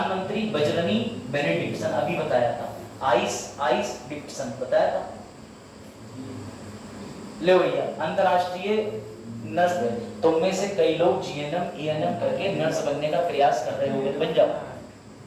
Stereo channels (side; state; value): both; identical; correlation 1.00